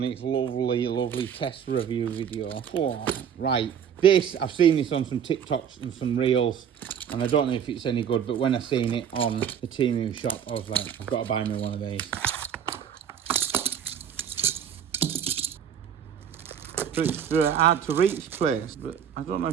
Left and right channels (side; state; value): left; quieter; 8.4 dB